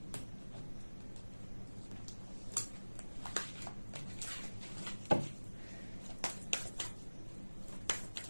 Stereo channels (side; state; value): both; inverted; correlation -1.00